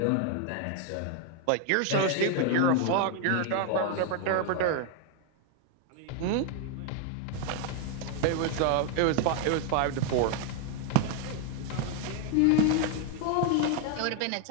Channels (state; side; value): different; both; correlation 0.00